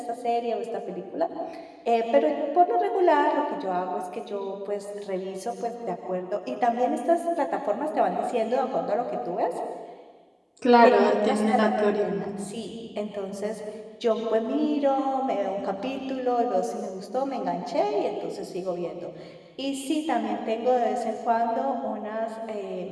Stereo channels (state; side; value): identical; both; correlation 1.00